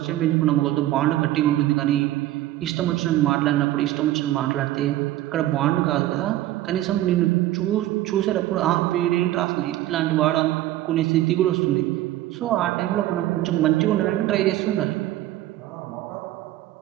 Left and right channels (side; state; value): left; quieter; 14.8 dB